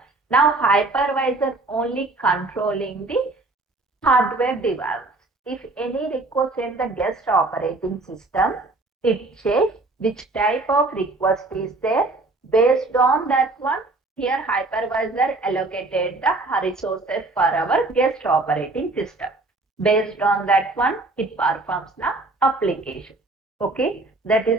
Now hypervisor only controlling the hardware device. If any request in the guest operating system, it checks which type of request is there. Based on that one, here hypervisor allocated the resources for our guest operating system. Based on that one, it performs the application. Okay, that is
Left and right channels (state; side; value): quieter; left; 3.2 dB